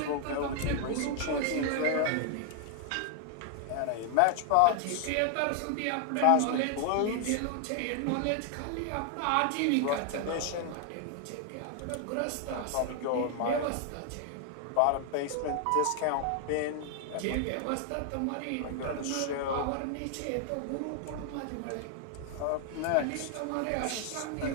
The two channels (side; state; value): both; different; correlation 0.00